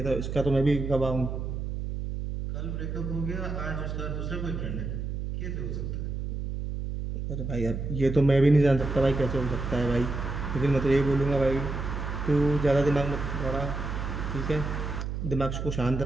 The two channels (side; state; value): right; noise; hum, 4 dB below the sound